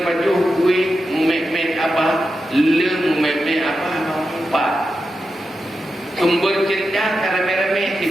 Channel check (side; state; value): both; normal; correlation 0.89